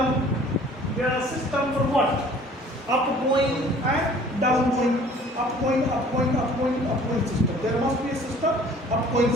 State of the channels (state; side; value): normal; both; correlation 0.52